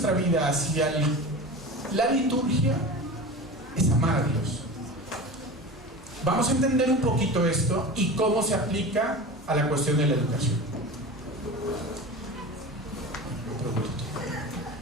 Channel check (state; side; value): normal; both; correlation 0.32